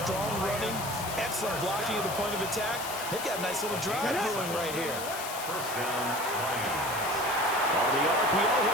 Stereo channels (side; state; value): left; noise; hiss, 8 dB below the sound